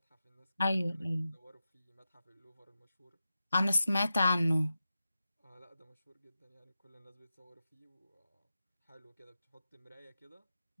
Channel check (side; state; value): both; inverted; correlation -0.92